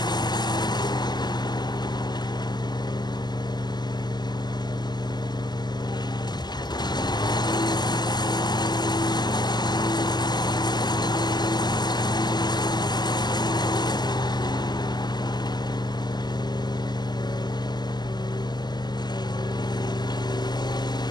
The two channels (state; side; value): late; right; 0.21 ms